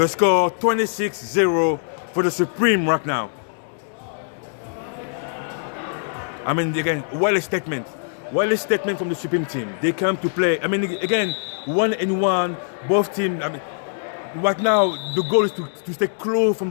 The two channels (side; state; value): right; silent; digital silence